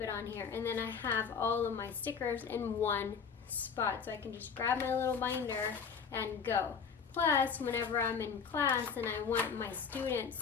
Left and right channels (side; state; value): right; quieter; 6.3 dB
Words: on here, and then I have all of my stickers in one spot, so I can just grab my little binder and go. Plus, whenever I'm in class and I want my students